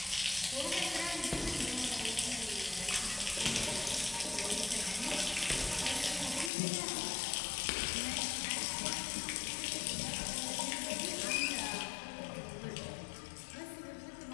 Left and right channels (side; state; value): right; drops out; at 6.5 s